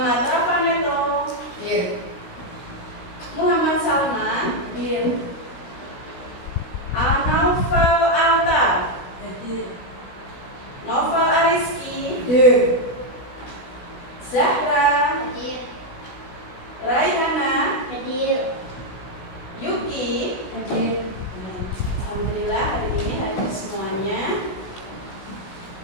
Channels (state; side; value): late; right; 16 ms